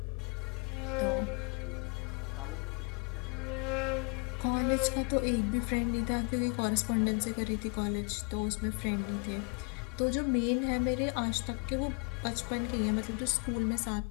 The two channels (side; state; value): right; quieter; 34.7 dB